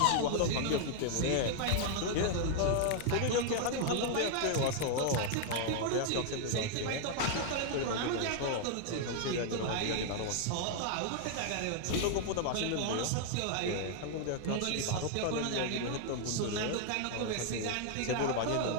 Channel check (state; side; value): different; both; correlation 0.00